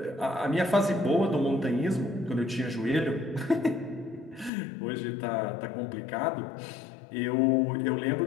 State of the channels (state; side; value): drops out; right; at 4.5 s